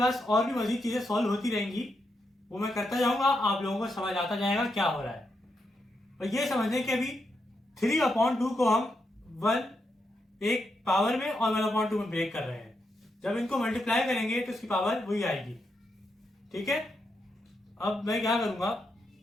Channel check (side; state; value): both; normal; correlation 0.83